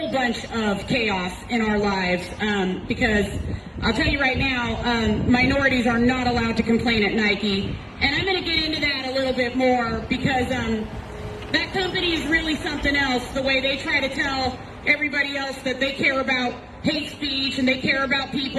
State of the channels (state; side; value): identical; both; correlation 1.00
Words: bunch of chaos in our lives, because I'll tell you right now, minorities are not allowed to complain at Nike, and I'm going to get into that a little bit more because that company is really something else, the way they try to tell everybody else that they care about hate speech and they care about